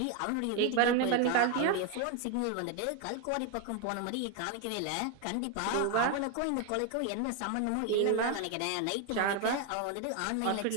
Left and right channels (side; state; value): both; different; correlation 0.01